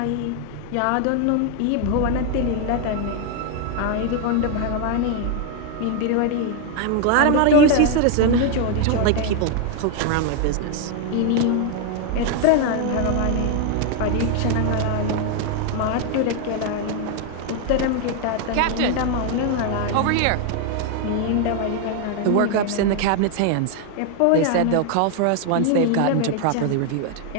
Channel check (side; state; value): both; different; correlation 0.01